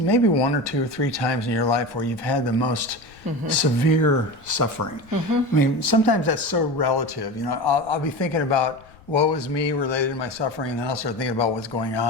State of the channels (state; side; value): noise; left; rumble, 25 dB below the sound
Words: one or two or three times in your life where you've had the most severe suffering. I mean, sometimes that's so relative. I'll be thinking about woe is me related to my suffering, and then I'll start thinking about what's going